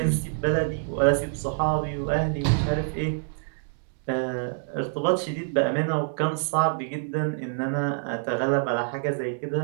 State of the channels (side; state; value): left; silent; digital silence